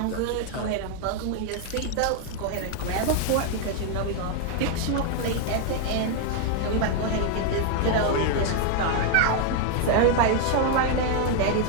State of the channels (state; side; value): different; both; correlation 0.00